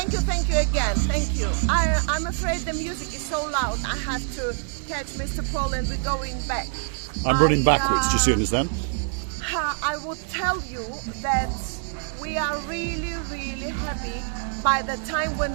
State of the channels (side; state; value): left; silent; 56 dB below the other